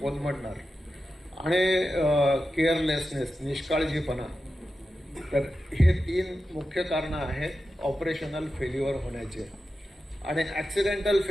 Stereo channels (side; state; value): both; normal; correlation 0.92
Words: आणि केअरलेसनेस, निष्काळजीपणा. तर हे 3 मुख्य कारणं आहेत ऑपरेशनल फेल्युअर होण्याचे. आणि ऍक्सिडेंटल